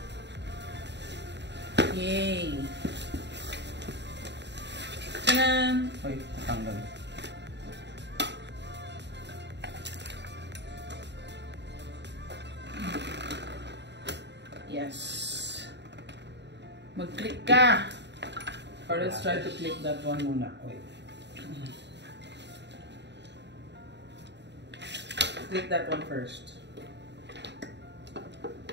Yay! Tanan! Uy, natanggal. Yes. Mag-click ka! Or let's try to click that one muna. Wait. Click that one first.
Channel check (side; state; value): left; late; 0.51 ms